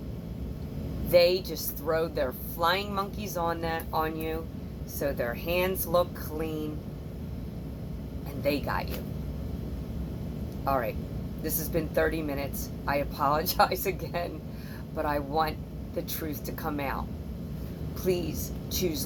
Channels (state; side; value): identical; both; correlation 1.00